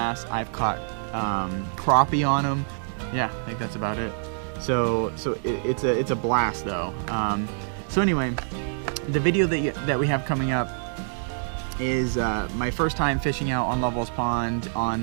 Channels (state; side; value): silent; left; digital silence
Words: I've caught crappie on them. Yeah, I think that's about it. So it's a blast though. So anyway, the video that we have coming up is my first time fishing out on Lovewell's Pond on